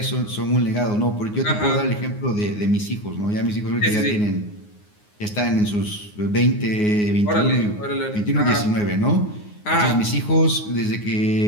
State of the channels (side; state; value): right; late; 9.6 ms